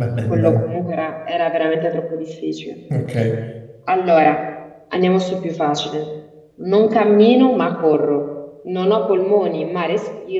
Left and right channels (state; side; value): identical; both; correlation 1.00